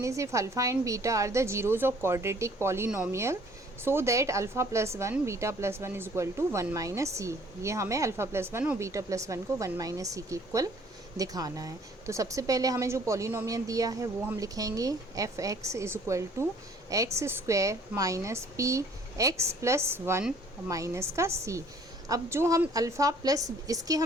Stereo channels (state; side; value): normal; both; correlation 0.57